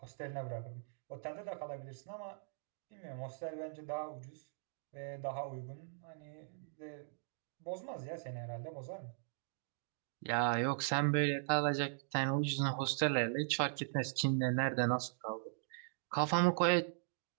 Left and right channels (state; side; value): silent; left; digital silence